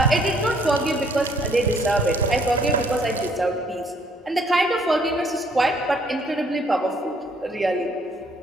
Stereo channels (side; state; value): both; normal; correlation 0.63